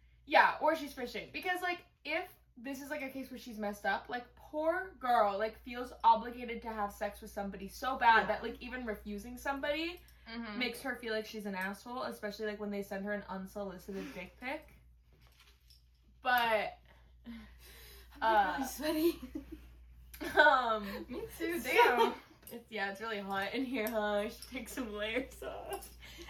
yeah, or she's fishing, because, like, if this is, like, a case where she's messed up, like, poor girl, like, feels obligated to have sex with somebody so bad that, like, even refusing somebody makes her feel like she's an asshole, especially, like, when they send her an unsolicited dick pic. But I'm really sweaty. Me too, damn. It's really hot in here, huh? I should take some layers off.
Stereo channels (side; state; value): both; identical; correlation 1.00